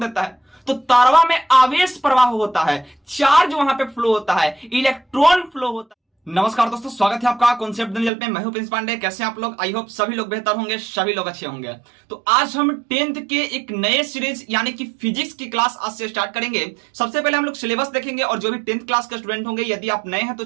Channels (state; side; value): drops out; left; at 8.1 s